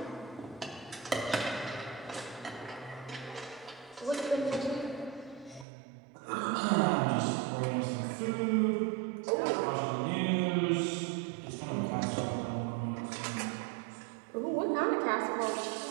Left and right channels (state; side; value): drops out; left; at 5.7 s